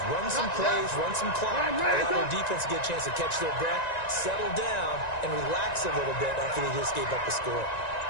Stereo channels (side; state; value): right; late; 1.9 ms